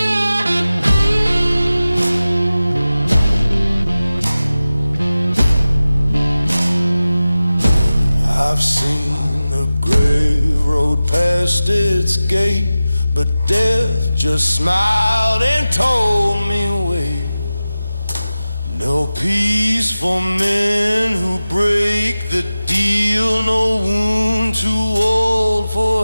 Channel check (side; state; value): both; inverted; correlation -0.96